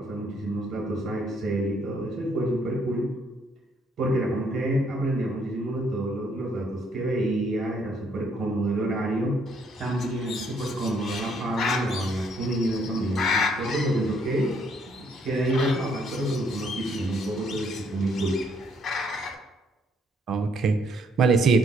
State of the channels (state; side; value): normal; both; correlation 0.68